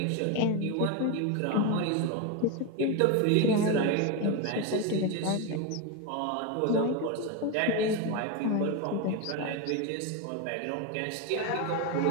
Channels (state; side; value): different; both; correlation 0.03